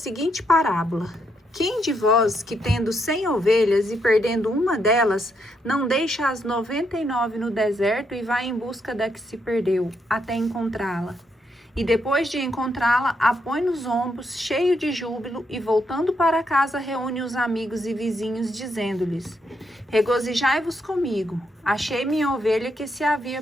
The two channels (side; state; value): both; normal; correlation 0.78